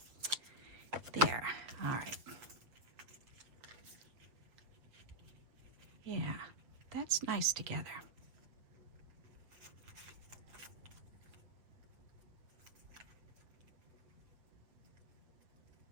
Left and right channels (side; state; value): left; late; 7.7 ms